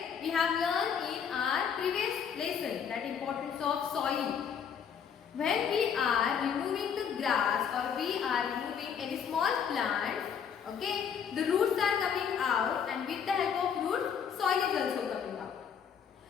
We have learned in our previous lesson that importance of soil. When we are removing the grass or we are removing any small plants, okay, the roots are coming out, and with the help of roots, soil is also coming out.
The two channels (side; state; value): right; quieter; 7.5 dB